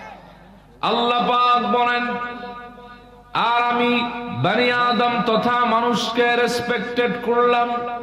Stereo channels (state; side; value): identical; both; correlation 1.00